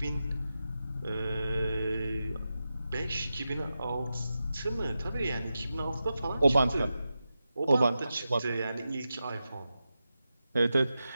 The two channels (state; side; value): inverted; both; correlation -0.91